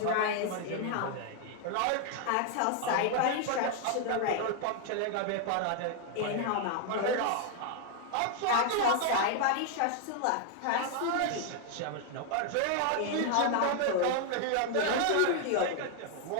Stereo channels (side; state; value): both; different; correlation 0.00